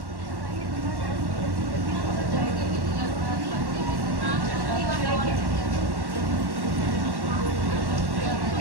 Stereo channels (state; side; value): late; left; 1.1 ms